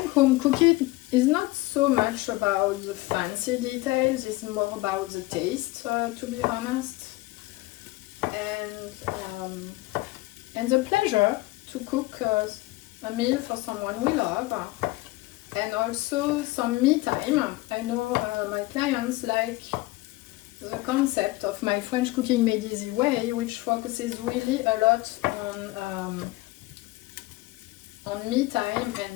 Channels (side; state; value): right; quieter; 19.8 dB